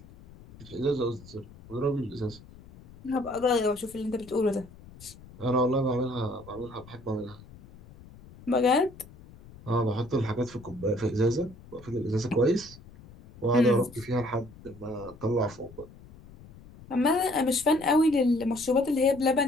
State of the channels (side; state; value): left; noise; rumble, 20 dB below the sound